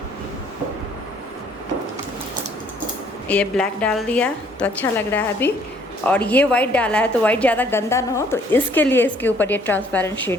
ये ब्लैक डाल दिया तो अच्छा लग रहा है अभी, और ये वाइट डाला है तो वाइट ज़्यादा गंदा ना हो, तो इसके लिए इसके ऊपर ये ट्रांसपेरेंट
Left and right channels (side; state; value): both; normal; correlation 0.61